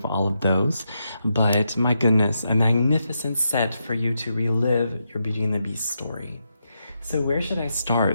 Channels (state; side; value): inverted; both; correlation -0.84